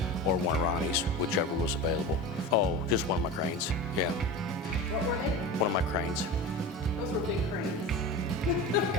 or one of Ronnie's, whichever was available. Oh, just one of my cranes, yeah. What were they? One of my cranes. Those were big cranes.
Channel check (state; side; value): normal; both; correlation 0.29